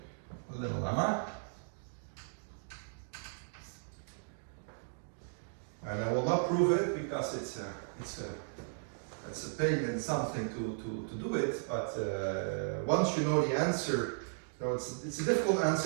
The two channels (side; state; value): left; silent; digital silence